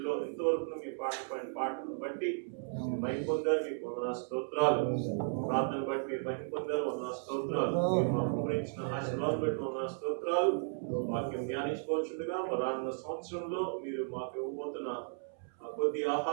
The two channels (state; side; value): silent; left; 55 dB below the other